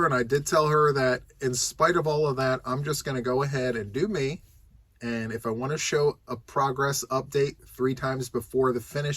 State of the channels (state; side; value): identical; both; correlation 1.00